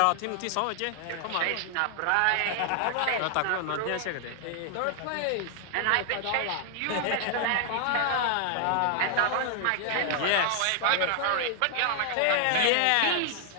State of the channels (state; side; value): different; both; correlation 0.00